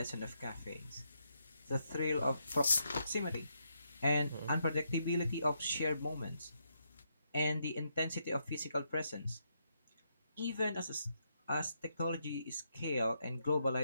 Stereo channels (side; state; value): both; inverted; correlation -0.79